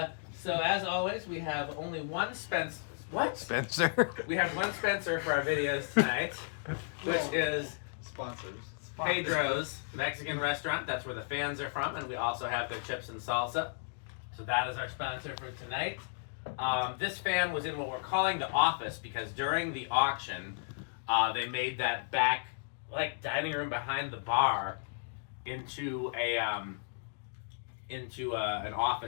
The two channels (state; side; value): silent; right; digital silence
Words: so, as always, we have only one Spencer. What? Spencer. We have one Spencer for our videos tonight, which is sponsors. Pedro's Mexican restaurant. That's where the fans are from, and we also have their chips and salsa. So that is our sponsor for tonight. This fan was in what we're calling the office because during the auction, they made that back dining room behind the bar into an